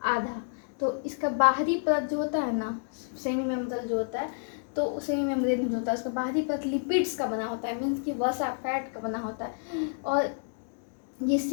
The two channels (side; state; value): right; silent; digital silence